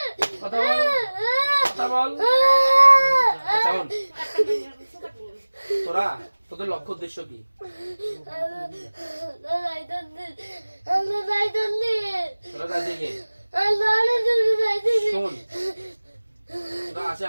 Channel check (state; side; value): inverted; both; correlation -1.00